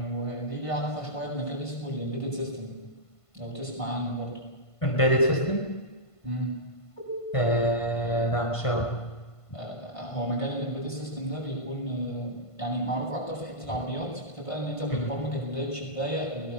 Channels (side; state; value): right; late; 1.5 ms